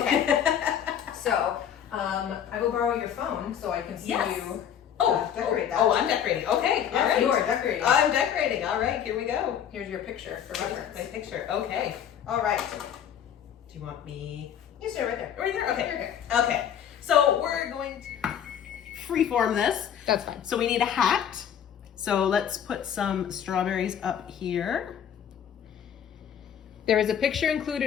So, I will borrow your phone so I can see you decorate that. Oh, I'm decorating. Okay, all right. You are decorating. I'm decorating. All right, here we go. Here's your picture for reference. My picture. Okay. All right. Do you want me? You stay right there. Right there? Okay. You're good. Okay. So we're going to freeform this. That's fine. So we need a hat. So let's put some strawberries up here. There is a picture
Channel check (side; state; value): right; quieter; 9.1 dB